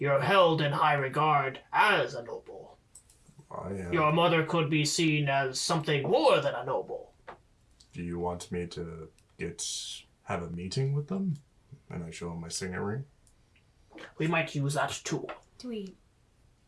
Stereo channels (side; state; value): both; identical; correlation 1.00